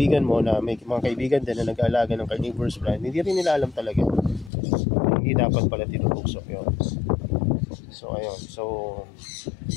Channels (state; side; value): drops out; right; at 4.5 s